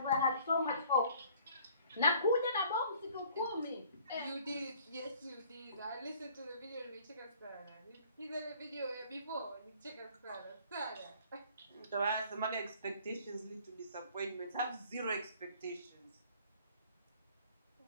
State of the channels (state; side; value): inverted; both; correlation -0.55